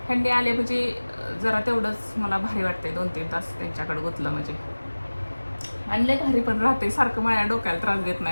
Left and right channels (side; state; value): both; inverted; correlation -1.00